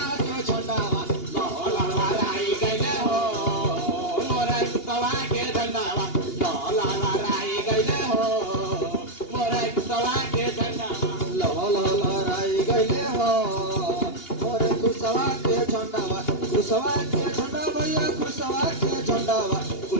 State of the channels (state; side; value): late; right; 2.8 ms